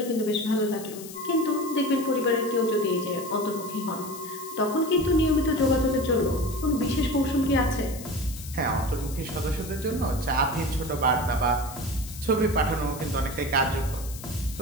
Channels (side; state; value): left; noise; hiss, 14 dB below the sound